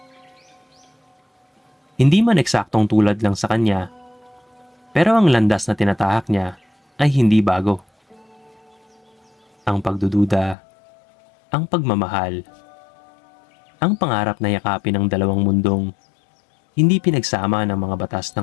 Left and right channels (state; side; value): drops out; right; at 10.6 s